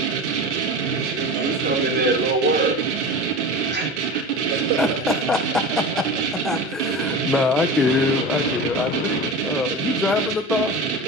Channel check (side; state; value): both; normal; correlation 0.30